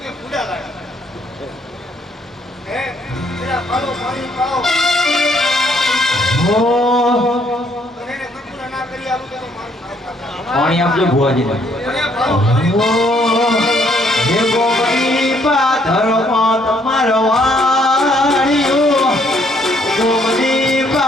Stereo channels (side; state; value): both; normal; correlation 0.67